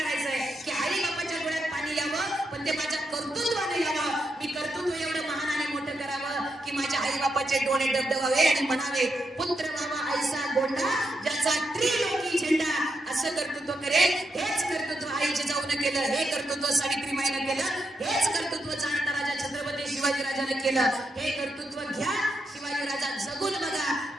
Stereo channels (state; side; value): normal; both; correlation 0.83